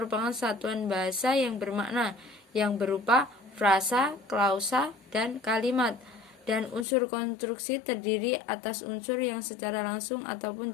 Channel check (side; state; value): right; drops out; at 6.9 s